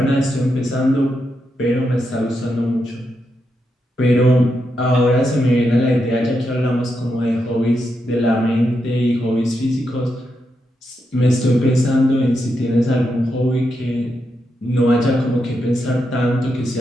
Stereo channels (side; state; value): both; normal; correlation 0.84